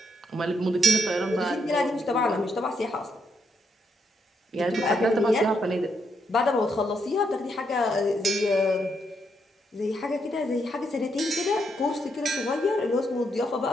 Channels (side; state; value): both; normal; correlation 0.77